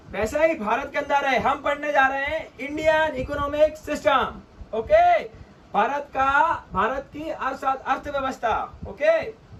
वैसा ही भारत के अंदर है। हम पढ़ने जा रहे हैं Indian economic system. Okay, Bharat की अर्थव्यवस्था। ओके,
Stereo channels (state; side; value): identical; both; correlation 1.00